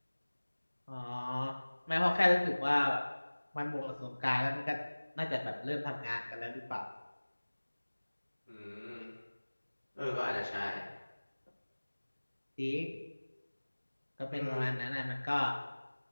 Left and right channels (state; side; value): inverted; both; correlation -1.00